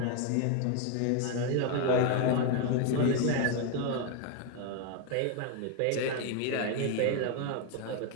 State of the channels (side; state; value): both; different; correlation 0.01